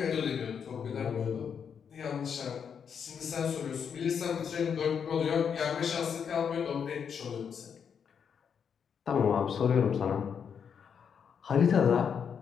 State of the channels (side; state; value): right; quieter; 7.2 dB